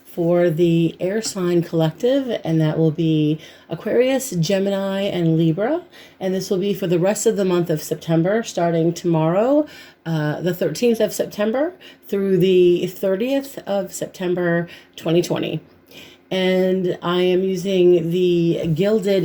for the air sign collective, and that will be Aquarius, Gemini, and Libra, and this will be for the rest of the month of September, starting tomorrow, the 13th of September, through the 30th of September 2020. And I am using the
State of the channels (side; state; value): both; identical; correlation 1.00